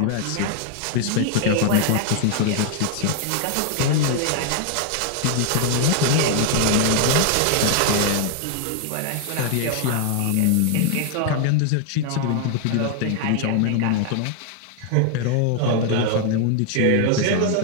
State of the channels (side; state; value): both; different; correlation 0.00